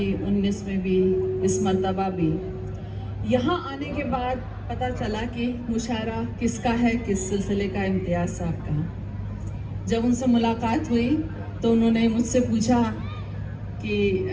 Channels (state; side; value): identical; both; correlation 1.00